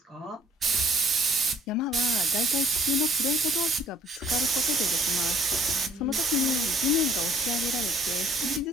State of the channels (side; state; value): both; normal; correlation 0.60